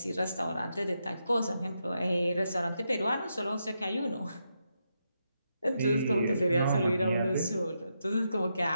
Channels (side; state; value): both; inverted; correlation -0.83